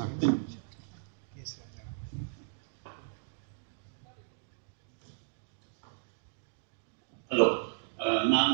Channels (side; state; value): left; silent; digital silence